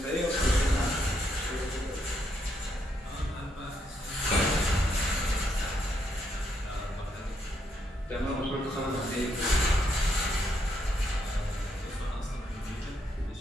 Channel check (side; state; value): both; normal; correlation 0.76